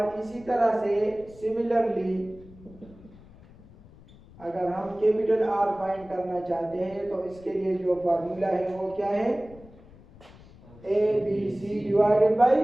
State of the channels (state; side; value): noise; left; rumble, 22 dB below the sound